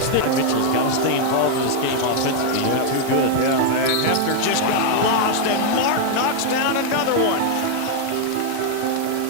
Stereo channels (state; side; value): different; both; correlation 0.00